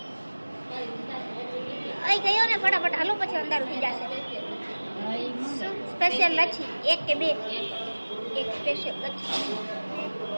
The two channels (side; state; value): both; inverted; correlation -1.00